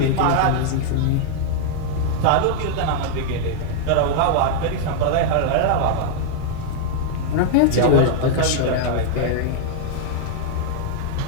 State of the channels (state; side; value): different; both; correlation 0.00